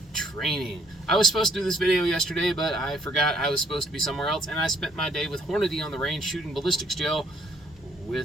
training. I was supposed to do this video yesterday, but I forgot I was supposed to be somewhere else, and I spent my day with Hornady on the range shooting ballistics gel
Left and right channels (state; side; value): normal; both; correlation 0.65